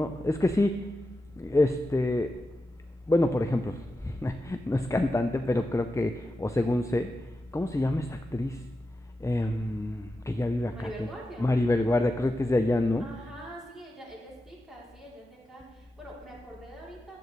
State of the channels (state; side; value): normal; both; correlation 0.90